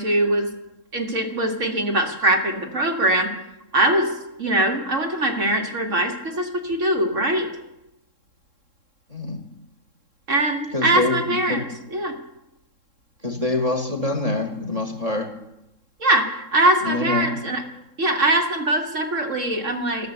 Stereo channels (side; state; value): left; late; 3.7 ms